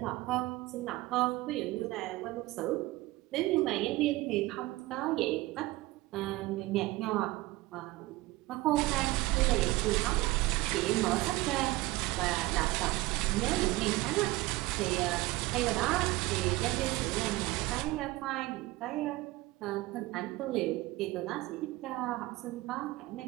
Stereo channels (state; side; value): quieter; left; 19.5 dB